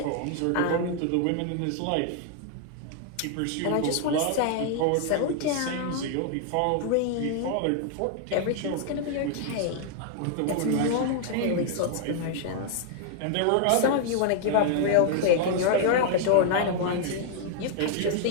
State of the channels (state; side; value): different; both; correlation 0.00